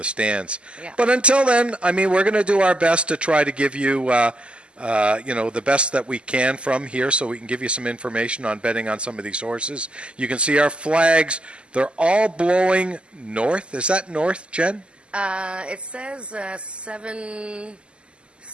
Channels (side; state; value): left; late; 0.052 ms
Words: stands. Yeah. But until then, I mean, we're going to do our best to try to give you, the best that we can from here so we can give you some information on betting on some of these horses. You can see our flags. They're all blowing north. Is that north, Jen? It says